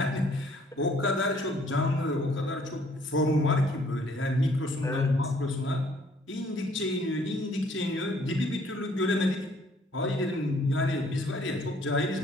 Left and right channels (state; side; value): normal; both; correlation 0.61